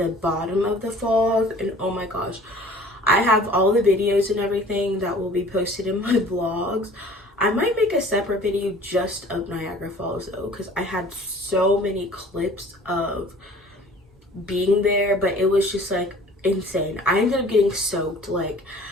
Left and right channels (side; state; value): both; normal; correlation 0.49